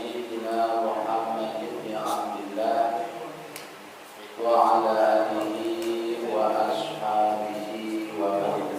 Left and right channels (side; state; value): both; identical; correlation 1.00